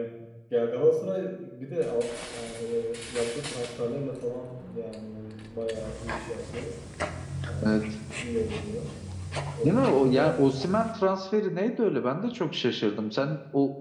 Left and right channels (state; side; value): identical; both; correlation 1.00